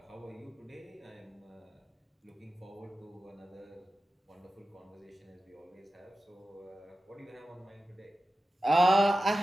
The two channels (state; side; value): normal; both; correlation 0.94